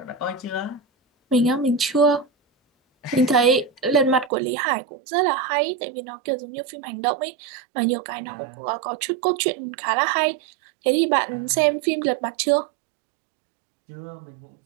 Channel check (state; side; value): drops out; left; at 4.3 s